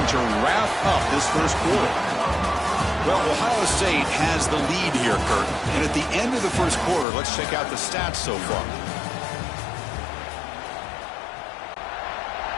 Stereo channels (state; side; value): drops out; right; at 7.1 s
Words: to wrap up this first quarter. Well, Ohio State has the lead here, Kurt. And at the end of the first quarter, let's check out the stats so far.